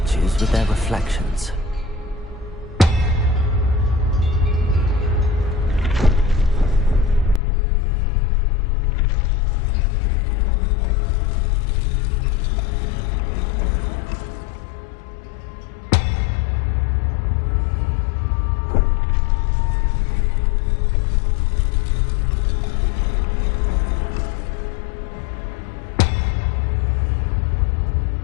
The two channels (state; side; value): drops out; right; at 7.4 s